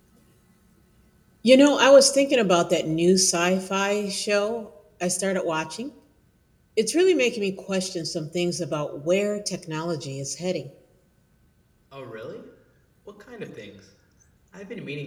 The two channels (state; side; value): identical; both; correlation 1.00